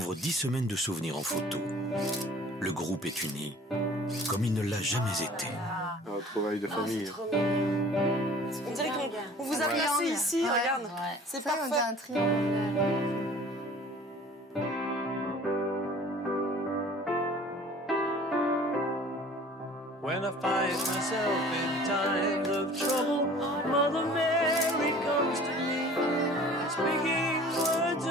10 semaines de souvenirs en photo. Le groupe est uni, comme il ne l'a jamais été. Un travail de famille. On dirait qu'on vous a placé ici, regarde. C'est parfait. On a un triangle. When I find myself in times of trouble, Mother Mary comes to me, speaking words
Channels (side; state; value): both; normal; correlation 0.48